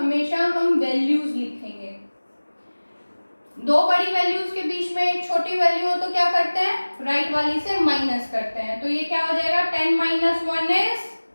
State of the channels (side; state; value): both; inverted; correlation -1.00